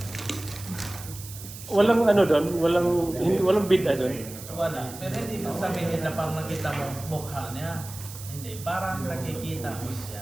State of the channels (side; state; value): right; noise; hiss, 14 dB below the sound